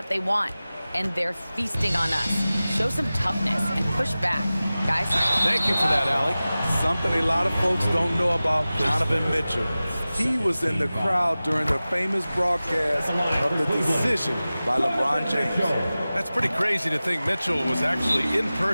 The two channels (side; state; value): both; inverted; correlation -0.97